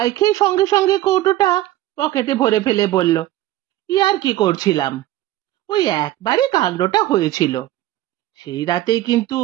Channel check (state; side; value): quieter; left; 15.1 dB